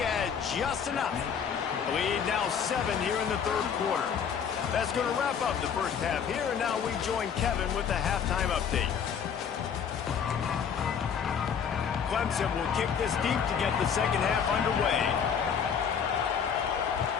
just enough. Lead now 7 here in the third quarter. That's going to wrap up the first half here, and now we join Kevin with the halftime update. Clemson will kick this deep to get the second half underway.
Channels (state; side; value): quieter; right; 7.3 dB